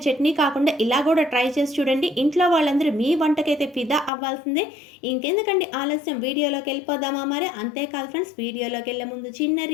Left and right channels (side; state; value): right; drops out; at 4.1 s